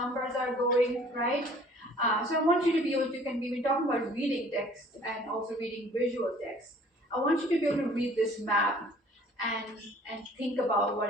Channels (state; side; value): normal; both; correlation 0.53